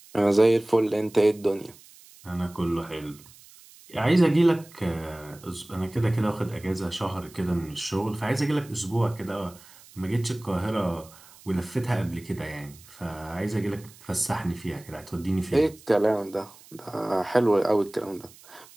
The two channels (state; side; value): noise; right; hiss, 23 dB below the sound